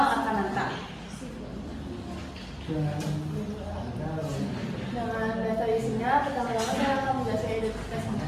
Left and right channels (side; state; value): both; identical; correlation 1.00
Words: Akananta. Dengan dasar isinya, pertama-tama saya akan menjelaskan identitas